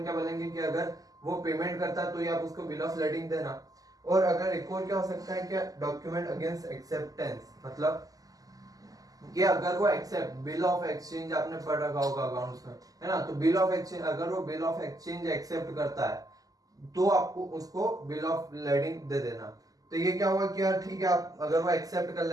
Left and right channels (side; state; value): left; late; 0.17 ms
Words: क्या बोलेंगे कि अगर वो पेमेंट करता है तो ही आप उसको बिल ऑफ लेडिंग देना। और अगर एक और क्या हो सकता है, क्या डॉक्यूमेंट अगेंस्ट एक्सेप्टेंस, मतलब कि अगर वो एक्सेप्ट बिल ऑफ एक्सचेंज आपने पढ़ रखा होगा अकाउंट्स में, है ना, तो बिल ऑफ एक्सचेंज, अगर वो बिल ऑफ एक्सचेंज एक्सेप्ट करता है तो आपको उसको बिल ऑफ लेडिंग दे देना। तो ये क्या हुआ कि यार ठीक है, आप अगर वो एक्सेप्ट कर